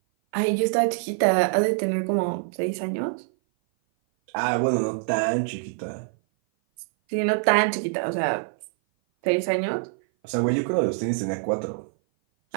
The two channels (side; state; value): left; silent; 57 dB below the other